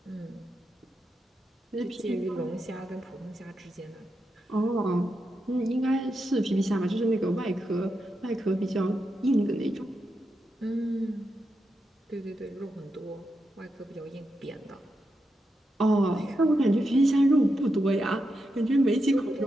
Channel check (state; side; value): normal; both; correlation 0.86